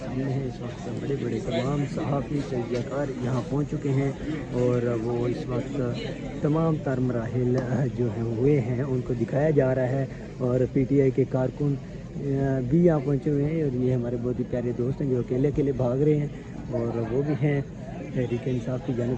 है। इस वक्त बड़े बड़े तमाम सहाफ़ी तजज़ियाकार यहाँ पहुँच चुके हैं और वो इस वक्त तमाम तर मराहिल जो हैं हुए हैं उनको दिखाया जा रहा है और PTI के कारकुन भी यहाँ पहुँचे हुए हैं और ये हमारे बहुत ही प्यारे दोस्त हैं जो अकेले अकेले भाग रहे हैं और वो भी हैं तहरीक इंसाफ की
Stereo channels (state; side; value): identical; both; correlation 1.00